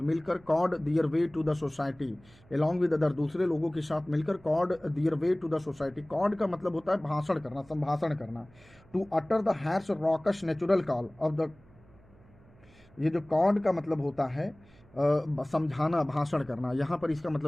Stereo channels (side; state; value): right; noise; hum, 27 dB below the sound